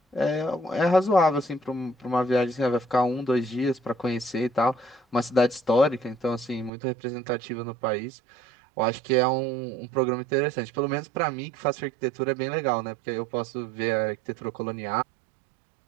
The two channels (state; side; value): drops out; left; at 6.7 s